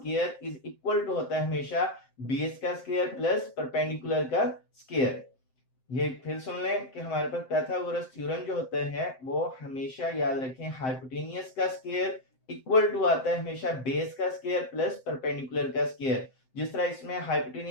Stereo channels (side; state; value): right; late; 7.7 ms